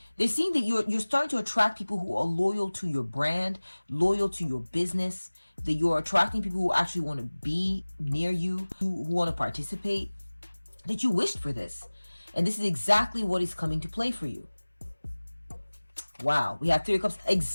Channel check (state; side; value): inverted; both; correlation -1.00